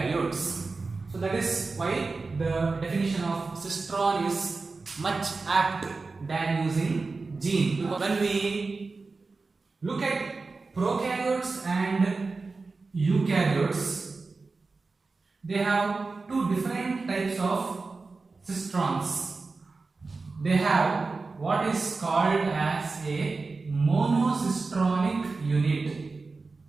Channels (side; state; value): left; quieter; 4.0 dB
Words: So that is why the definition of Sitron is much apt than using gene. When we look at prokaryotes and eukaryotes, they have two different types of cistrons. They have what is called as a monocistronic unit